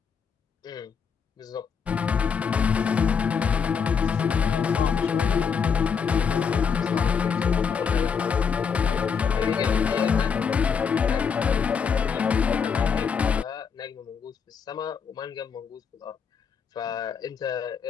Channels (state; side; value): quieter; right; 6.4 dB